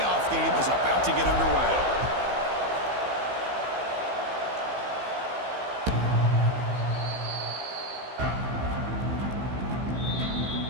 game is about to get underway.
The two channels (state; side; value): late; left; 15 ms